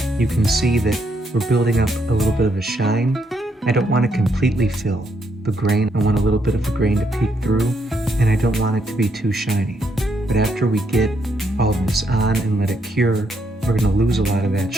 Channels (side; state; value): both; normal; correlation 0.76